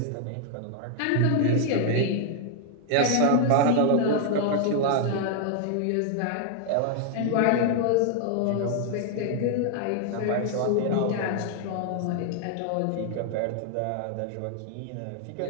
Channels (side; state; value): both; different; correlation 0.00